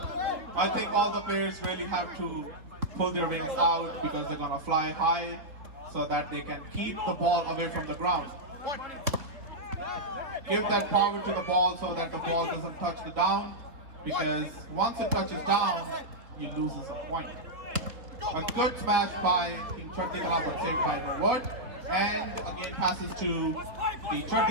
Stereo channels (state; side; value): late; left; 3.6 ms